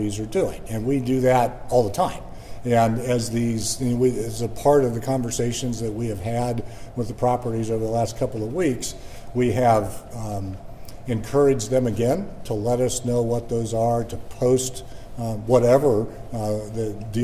are doing. And we do that all the time. And as as a part of the conversations that we have had with the properties over the last couple of weeks, we have encouraged them again to let us know what those are, to post whatever the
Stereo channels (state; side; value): identical; both; correlation 1.00